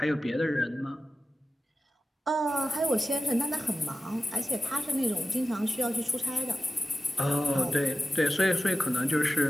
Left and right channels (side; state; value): both; normal; correlation 0.94